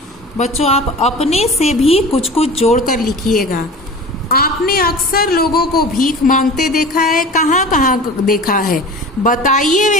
बच्चों, आप अपने से भी कुछ कुछ जोड़कर लिखिएगा। आपने अक्सर लोगों को भीख मांगते देखा है, कहाँ कहाँ देखा है? बताइए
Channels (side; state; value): both; normal; correlation 0.37